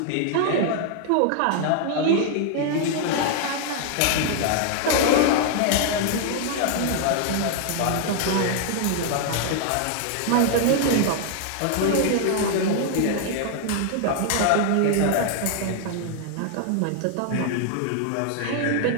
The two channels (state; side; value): different; both; correlation 0.00